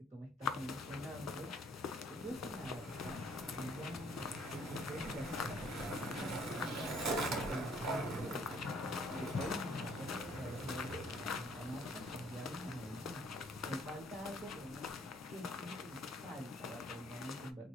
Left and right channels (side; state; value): both; normal; correlation 0.62